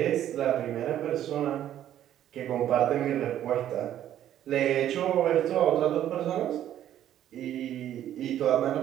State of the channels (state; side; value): quieter; left; 11.5 dB